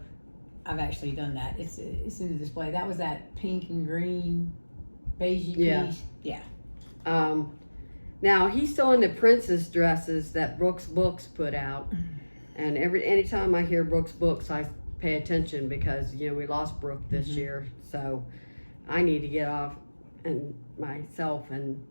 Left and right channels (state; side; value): inverted; both; correlation -1.00